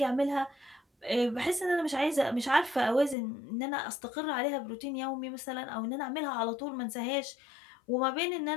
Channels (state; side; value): drops out; right; at 3.2 s